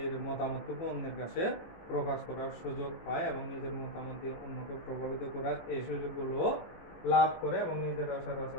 মতামতটুকু অন্যের কাছে প্রকাশ করার সুযোগ পায় এবং নিজের মতামত দিয়ে অন্যকে প্রভাবিত করার এই সুযোগগুলো লাভ করে এবং নিজের আচার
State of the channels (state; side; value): late; right; 18 ms